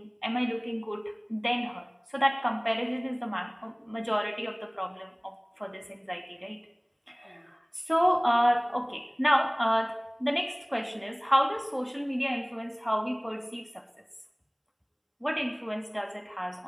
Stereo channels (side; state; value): both; identical; correlation 1.00